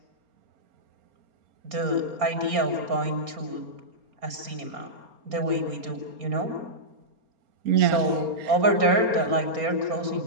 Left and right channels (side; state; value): left; late; 4.3 ms